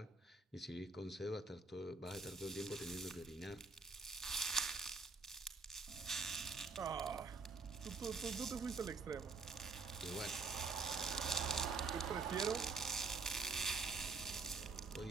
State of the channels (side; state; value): left; quieter; 4.1 dB